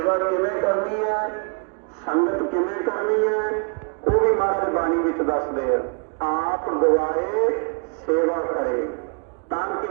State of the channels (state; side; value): quieter; left; 39.2 dB